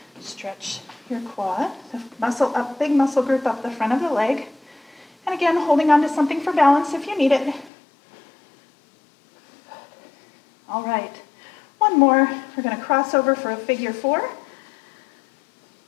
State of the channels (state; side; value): drops out; right; at 7.7 s